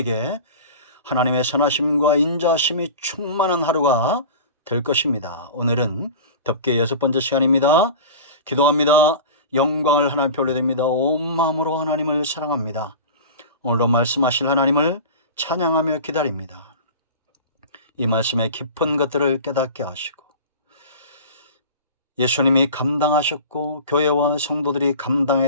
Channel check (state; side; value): inverted; both; correlation -0.34